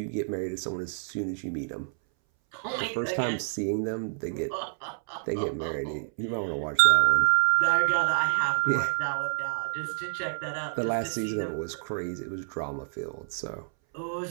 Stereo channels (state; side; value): silent; left; 59 dB below the other